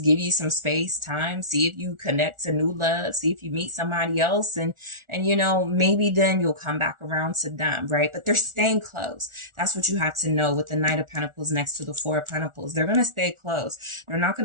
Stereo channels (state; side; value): late; left; 1.4 ms